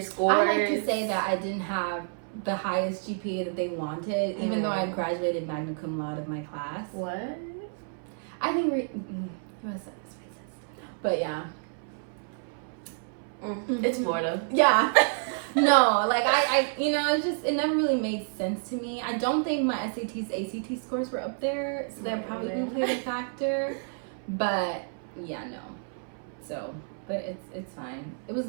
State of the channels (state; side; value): silent; left; 58 dB below the other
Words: scores. I like to say that I didn't have the highest GPA that they wanted, even though I graduated magna cum laude of my class. What? I think but yeah. It's Florida. Yeah. No, like I it never really made sense to me. I don't think my SATs, ACT scores were up there, so that probably played a factor. But yeah, no. So. But it's fine. It was